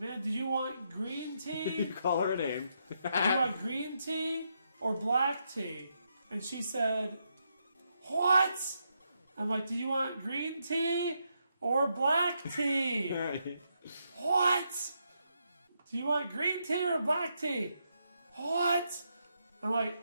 did you want green tea? You call her a name. Do you want green tea or black tea? And she said, what? I'm like, do you want green tea or black tea? What? Do you want green tea or black tea? What? I'm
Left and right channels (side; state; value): both; inverted; correlation -0.81